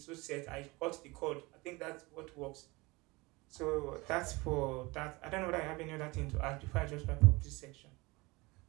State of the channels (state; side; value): quieter; left; 23.7 dB